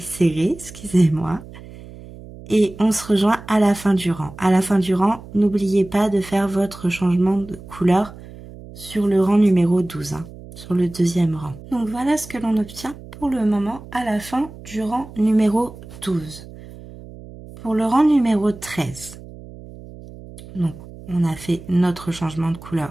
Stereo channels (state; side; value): noise; right; hum, 17 dB below the sound